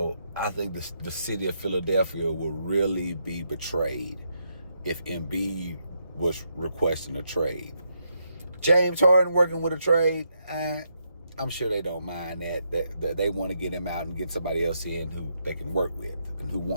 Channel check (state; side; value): inverted; both; correlation -0.79